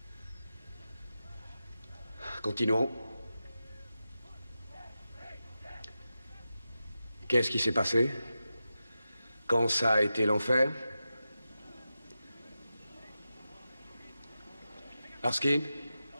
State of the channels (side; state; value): both; inverted; correlation -0.91